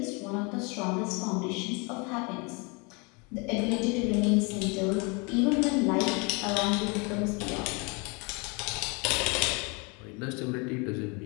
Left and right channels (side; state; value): right; quieter; 30.8 dB